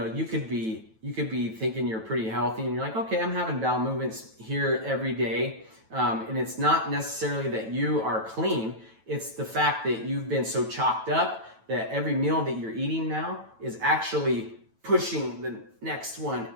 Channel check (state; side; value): late; left; 9.1 ms